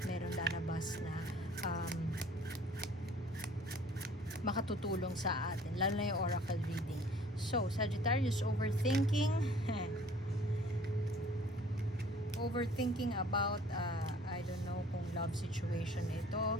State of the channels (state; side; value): normal; both; correlation 0.53